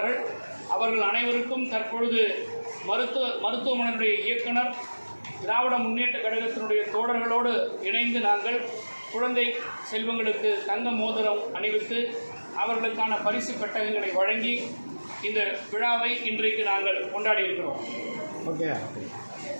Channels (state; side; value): inverted; both; correlation -1.00